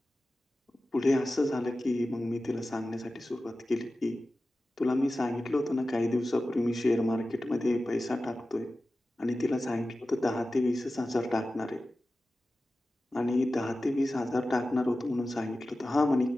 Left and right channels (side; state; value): both; normal; correlation 0.95